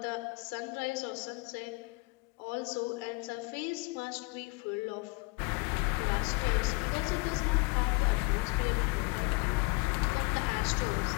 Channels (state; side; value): quieter; right; 27.0 dB